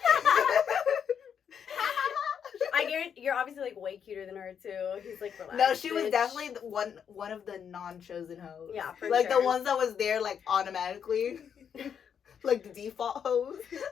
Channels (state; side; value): quieter; right; 7.8 dB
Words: I guarantee you're obviously like way cuter than her too. He's like relaxed. no, she was bitch. definitely one of the non-chosen hoes. Yeah, for like sure. the ones that was there like automatically, like the default hoes.